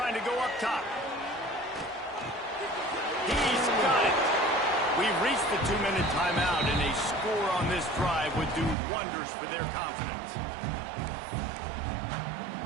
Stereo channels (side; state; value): left; drops out; at 8.8 s